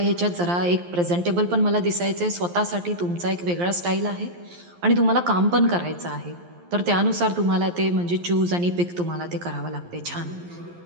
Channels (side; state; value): left; late; 11 ms